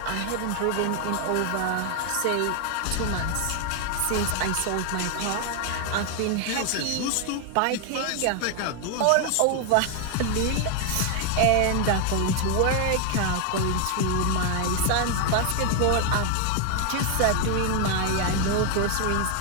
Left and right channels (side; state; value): both; different; correlation 0.00